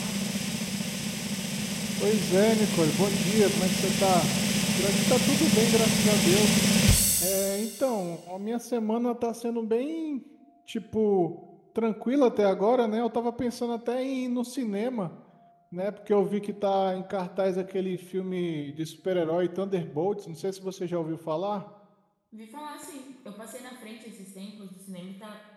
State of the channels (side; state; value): both; identical; correlation 1.00